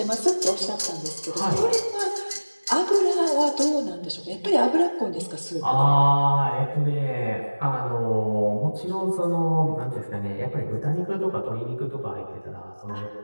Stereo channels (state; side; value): inverted; both; correlation -1.00